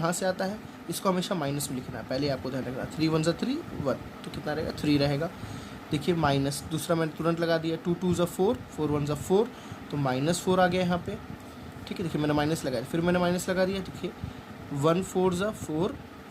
से आता है, इसको हमेशा माइनस में लिखना है, पहले आपको ध्यान रखना। 3 1 ज़ा 3 1, तो कितना रहेगा 3 रहेगा। देखिए माइनस, दूसरा मैंने तुरंत लगा दिया, 2 2 ज़ा 4 4 1 ज़ा 4, तो -4 आ गया यहाँ पे, ठीक है। देखिए मैंने माइनस लगाया, फिर मैंने माइनस लगा दिया, देखिए 1 4 ज़ा 4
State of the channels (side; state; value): both; identical; correlation 1.00